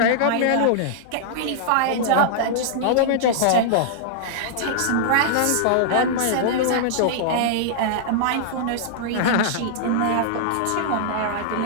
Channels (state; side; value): different; both; correlation -0.01